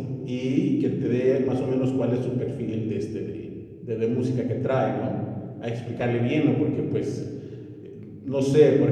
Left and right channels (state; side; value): identical; both; correlation 1.00